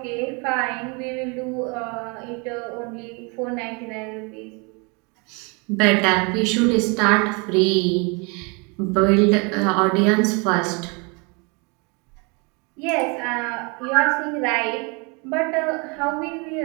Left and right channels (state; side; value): quieter; left; 31.6 dB